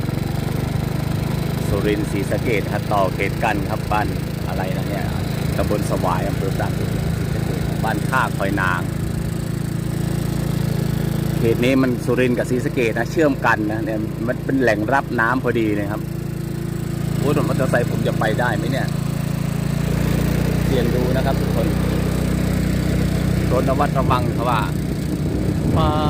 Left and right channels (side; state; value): both; identical; correlation 1.00